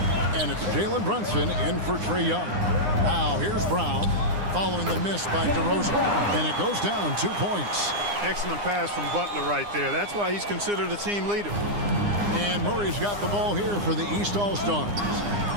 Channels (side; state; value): left; late; 9.8 ms